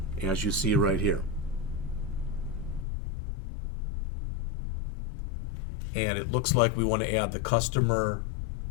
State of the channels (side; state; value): right; drops out; at 2.9 s